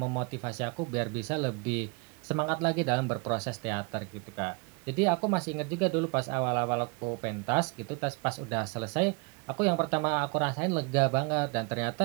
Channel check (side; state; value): left; quieter; 30.1 dB